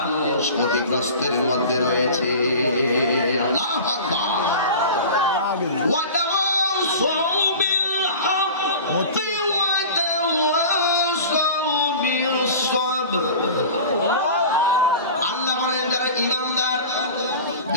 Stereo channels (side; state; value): both; inverted; correlation -0.37